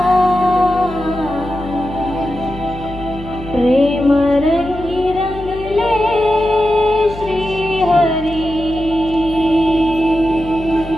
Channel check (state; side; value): noise; left; hum, 13 dB below the sound